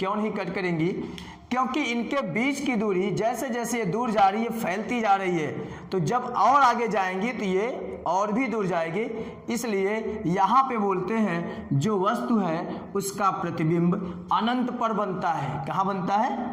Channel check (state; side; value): identical; both; correlation 1.00